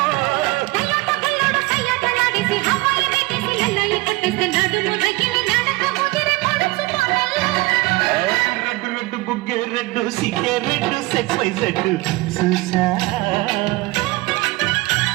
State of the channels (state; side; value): quieter; left; 21.8 dB